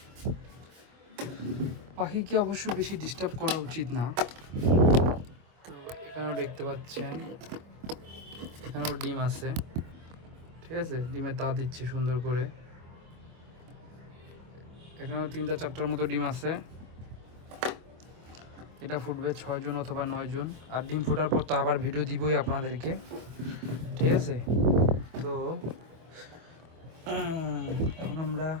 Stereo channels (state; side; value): late; left; 24 ms